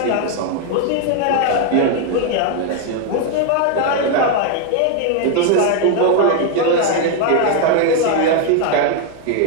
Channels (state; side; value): different; both; correlation 0.00